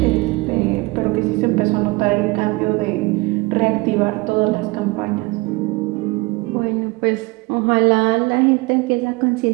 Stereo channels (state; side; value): quieter; left; 23.6 dB